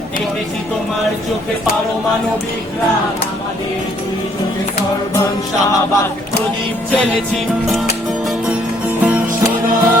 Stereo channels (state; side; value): normal; both; correlation 0.65